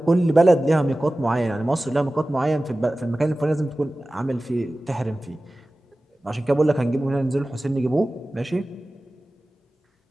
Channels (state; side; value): normal; both; correlation 0.97